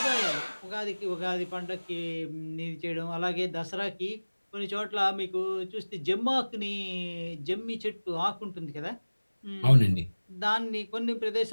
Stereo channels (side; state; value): both; inverted; correlation -1.00